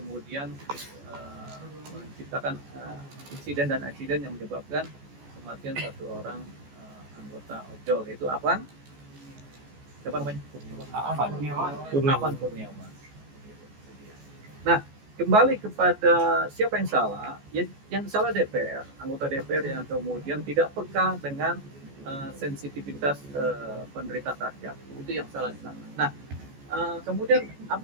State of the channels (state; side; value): late; left; 14 ms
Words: menciptakan insiden dan eksiden yang menyebabkan kematian satu orang anggota ojol, yaitu Afan. Siapa namanya? Afan Kurniawan. Nah, kembali kepada siapa yang salah, yang salah DPR, anggota DPR yang kemudian tidak peka dengan sensitivitas penderitaan rakyat, itu yang salah di sana. Nah, kemudian